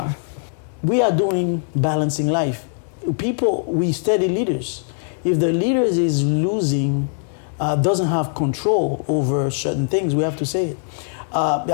We are doing balancing life. We study leaders. If the leader is losing, doesn't have control over certain things, we have to say it.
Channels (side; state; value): right; silent; digital silence